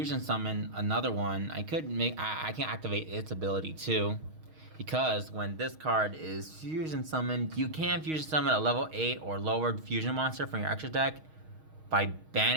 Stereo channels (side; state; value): left; late; 6.4 ms